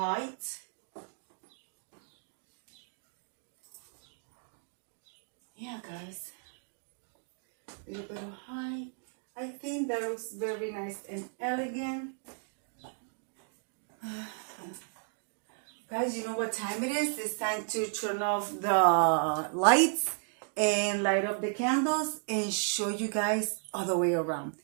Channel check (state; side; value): silent; left; 55 dB below the other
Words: Yeah guys, a little bit of height. I think that looks very nice and elegant. Guys, you know what time it is? It's time to turn off the lights and light up the candles and show you guys all the way around.